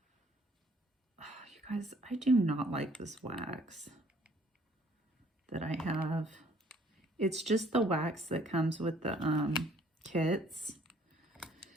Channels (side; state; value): both; normal; correlation 0.60